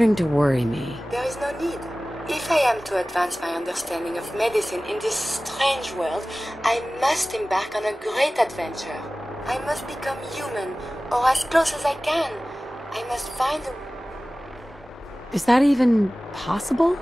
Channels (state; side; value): normal; both; correlation 0.97